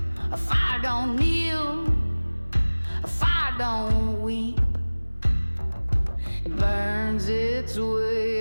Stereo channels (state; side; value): inverted; both; correlation -1.00